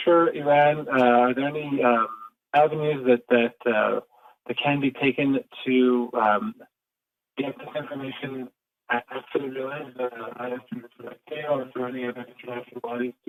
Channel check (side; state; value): both; identical; correlation 1.00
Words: Iran? Are there any avenues that can be taken to get this information after the release, either through the ICAO or through any other international bodies